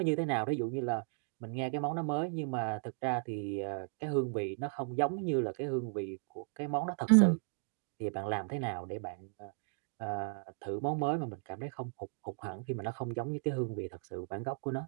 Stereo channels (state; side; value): silent; left; 54 dB below the other